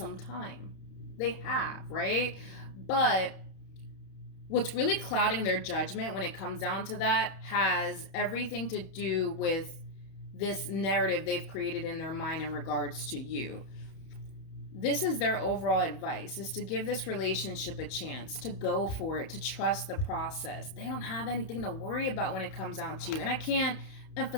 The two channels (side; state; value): right; late; 30 ms